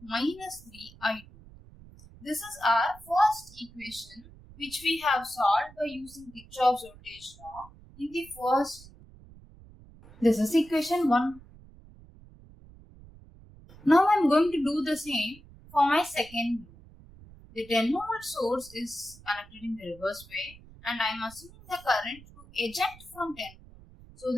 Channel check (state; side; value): noise; right; rumble, 21 dB below the sound